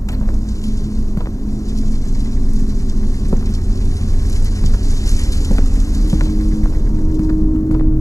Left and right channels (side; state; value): right; late; 0.16 ms